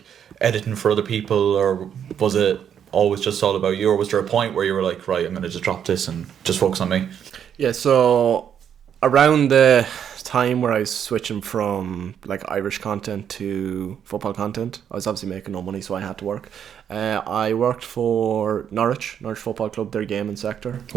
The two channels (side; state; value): left; quieter; 8.6 dB